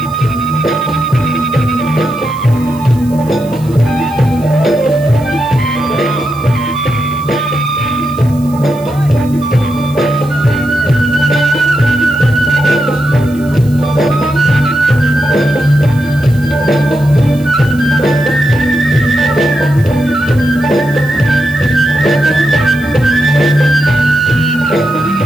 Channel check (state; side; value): noise; right; hiss, 23 dB below the sound